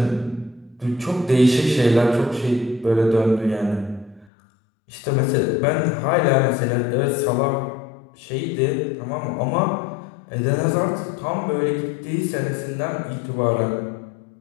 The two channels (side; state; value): right; drops out; at 4.3 s